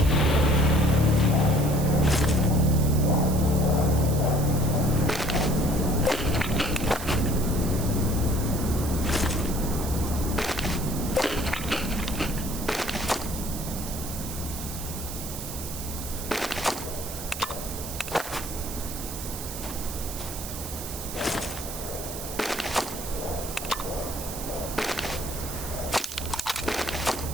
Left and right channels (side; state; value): right; noise; hiss, 9 dB below the sound